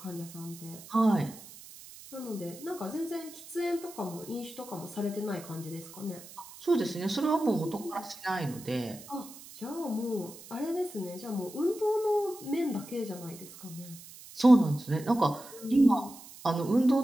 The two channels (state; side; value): noise; right; hiss, 17 dB below the sound